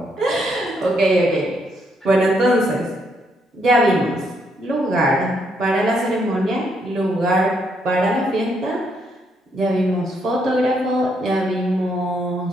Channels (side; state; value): both; normal; correlation 0.75